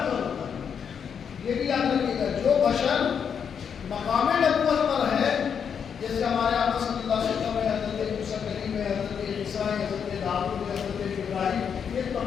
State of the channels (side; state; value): right; quieter; 7.2 dB